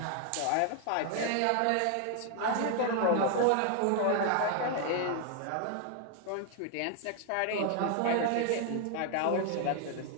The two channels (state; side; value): different; both; correlation 0.00